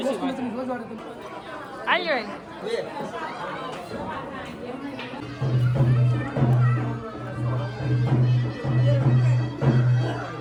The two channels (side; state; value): both; identical; correlation 1.00